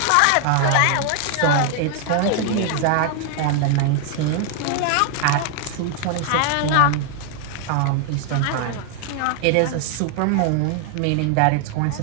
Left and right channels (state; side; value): different; both; correlation 0.00